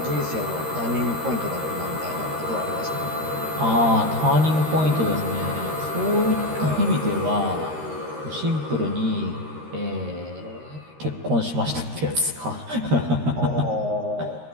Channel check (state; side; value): late; left; 13 ms